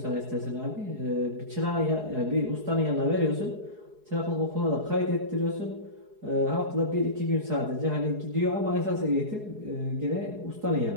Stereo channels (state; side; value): late; left; 4.8 ms